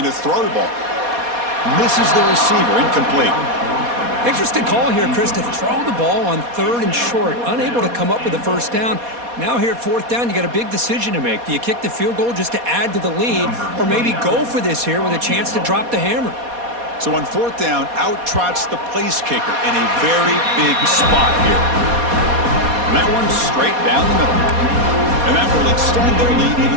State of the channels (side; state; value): left; late; 4.2 ms